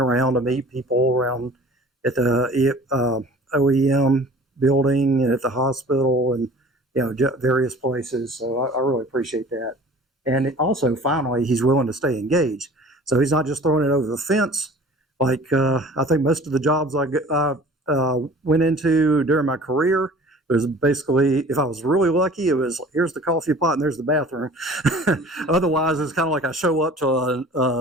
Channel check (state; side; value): normal; both; correlation 0.46